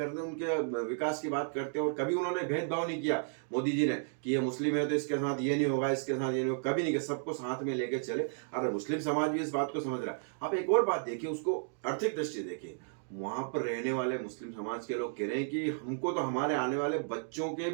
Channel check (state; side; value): silent; left; digital silence